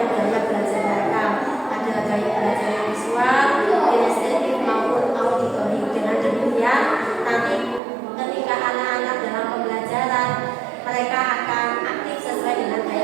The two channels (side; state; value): left; drops out; at 7.8 s